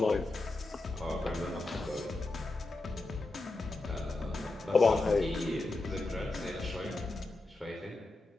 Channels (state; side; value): quieter; right; 3.0 dB